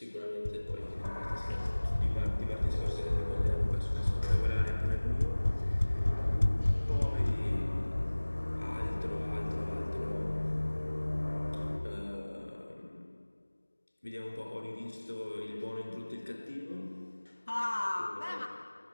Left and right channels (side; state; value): both; inverted; correlation -1.00